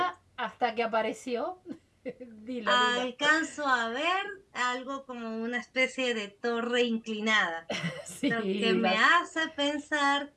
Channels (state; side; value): identical; both; correlation 1.00